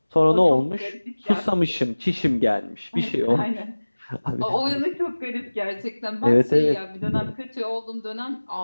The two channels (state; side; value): inverted; both; correlation -1.00